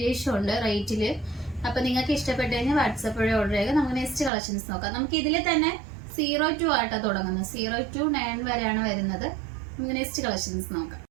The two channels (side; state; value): left; drops out; at 4.3 s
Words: ഉണ്ട് റേറ്റില്. അപ്പൊ നിങ്ങൾക്ക് ഇഷ്ടപ്പെട്ടു കഴിഞ്ഞാൽ വാട്സപ്പ് വഴി ഓർഡർ ചെയ്യുക. നമുക്ക് നെക്സ്റ്റ് കളക്ഷൻസ് നോക്കാം. നമുക്ക് ഇതിൽ തന്നെ 02 ആയിട്ടാണ് തുടങ്ങുന്നത്. 0 to 9 വരെയാണ് വരുന്നത്. നമുക്ക് നെക്സ്റ്റ് കളക്ഷൻസ് നോക്കാം.